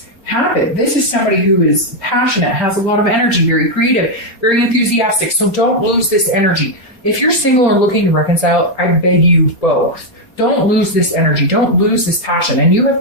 happen. This is somebody who is passionate, has a lot of energy, very creative, very enthusiastic. So don't lose this energy. If you're single or looking to reconcile, I beg you both. Don't lose this energy. Don't lose this passion. And you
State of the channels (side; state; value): right; late; 4.3 ms